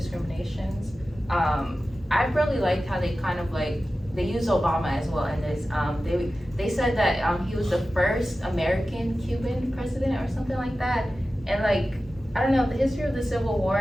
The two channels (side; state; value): both; normal; correlation 0.94